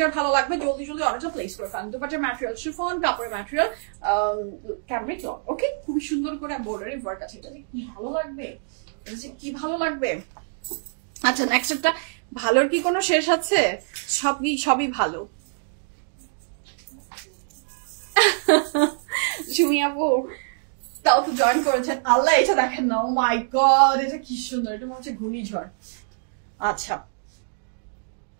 ভালো লাগবে জলদি জলদি অর্ডারটা প্লেস করে ফেলেন। দুপাট্টার ম্যাটেরিয়াল শিফন, কাপড়ের ম্যাটেরিয়াল ক্যামব্রিক লন। ওকে, খুবই সুন্দর করে এমব্রয়ডারি ওয়ার্ক আছে। এটা কি ভালো লাগবে, কি ভালো লাগবে। আচ্ছা, নেক্সট একটা, ভালোর কি কোনো শেষ আছে? সবই ভালো। সুমি আপু তাও তো জয়েন করেছেন, আল্লাহ। এটা দেখেন না, ও মাই গড, এটা কি সুন্দর। এটা হচ্ছে ঘূর্ণিঝড়। আচ্ছা,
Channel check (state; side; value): silent; left; digital silence